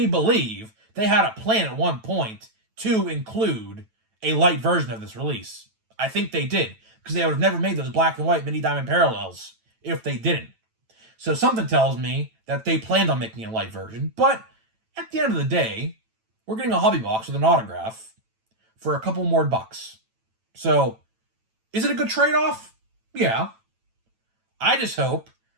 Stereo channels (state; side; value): late; left; 9.1 ms